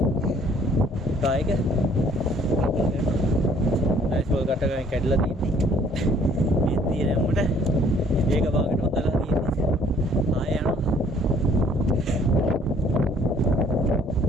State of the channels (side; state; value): both; normal; correlation 0.59